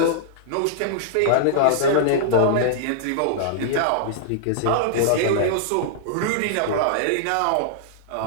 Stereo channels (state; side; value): different; both; correlation -0.01